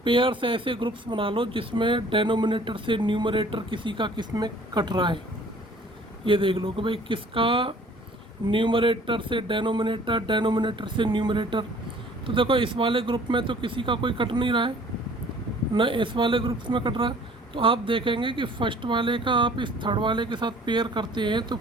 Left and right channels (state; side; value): normal; both; correlation 0.53